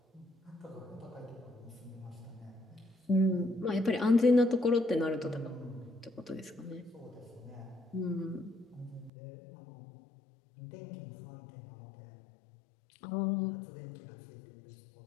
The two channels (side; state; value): right; drops out; at 9.1 s